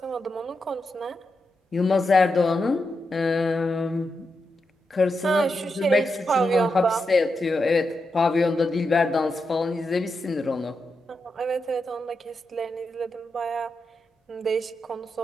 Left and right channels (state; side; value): normal; both; correlation 0.86